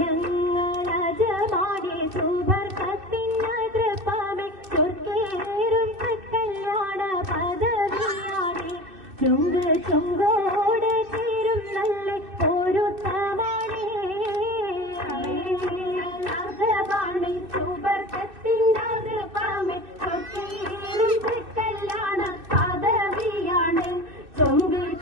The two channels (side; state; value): left; late; 2.6 ms